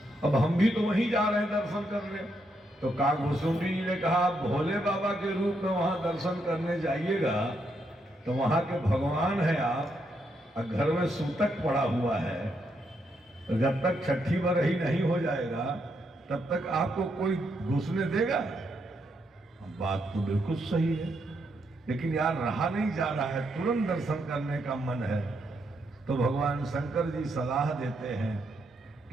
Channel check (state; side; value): normal; both; correlation 0.79